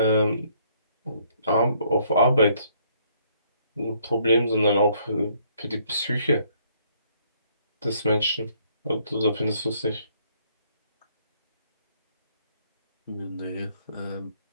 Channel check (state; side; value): inverted; both; correlation -0.66